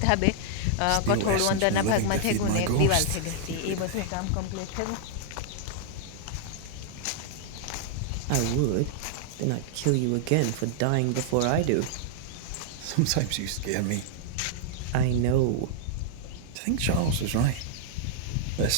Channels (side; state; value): both; different; correlation -0.01